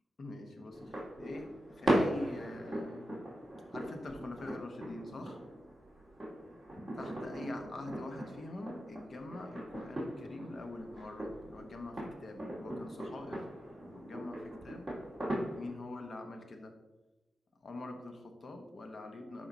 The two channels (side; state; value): both; normal; correlation 0.90